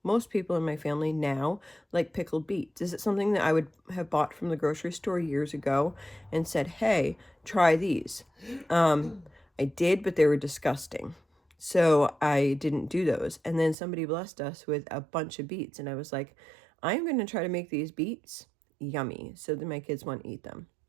Most people in my family now like pickled beets. Is it something that I would have bought from the grocery store years ago and said, hey, try these? I did, but they were disgusting. So I didn't do those. And then somebody blessed us with a bunch of beets. And I was like, I'm going to try to make these beets yummy so that my kids want to eat them.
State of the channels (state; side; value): drops out; left; at 13.8 s